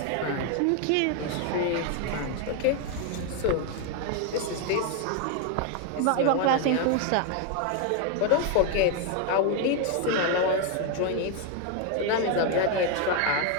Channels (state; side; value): different; both; correlation 0.01